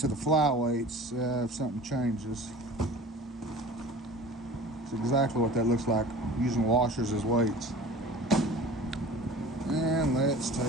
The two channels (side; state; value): both; normal; correlation 0.41